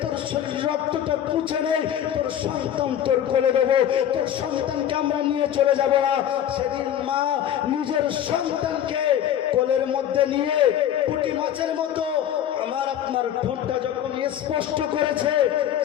তোর শরীর রক্তটা পুছে নে, তোর সন্তান তোর কোলে দেবো, তোর সন্তানকে আমরা নিয়ে চলে যাব না। সেদিন মা নিজের সন্তানকে কোলের মধ্যে নিয়ে পুঁটি মাছের মতো আমার আপনার ঠোঁটটা যখন স্পষ্ট করেছে,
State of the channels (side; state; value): right; quieter; 10.4 dB